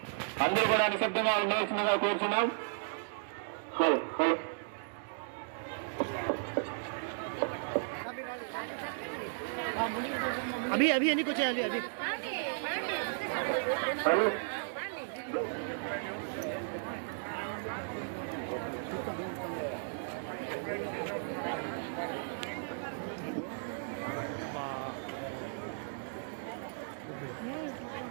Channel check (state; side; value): silent; left; digital silence